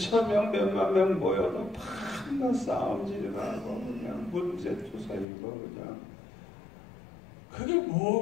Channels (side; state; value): right; drops out; at 5.2 s